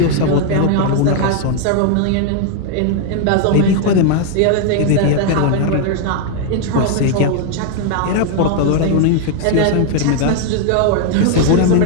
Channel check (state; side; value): different; both; correlation 0.00